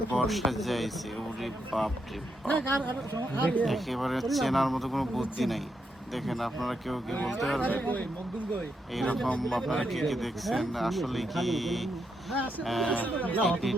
বর্ষা যাইছে। ওরে বাপ রে বাপ, একেবারে চেনার মতো কোনো বুদ্ধি নাই। দেখেন, আপনারা কেউ কি বলতে পারবেন এইরকম? আপনারা কে কে দেখছেন? আসলে কি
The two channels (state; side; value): normal; both; correlation 0.81